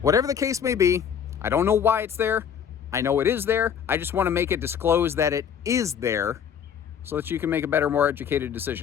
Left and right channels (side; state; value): right; quieter; 8.0 dB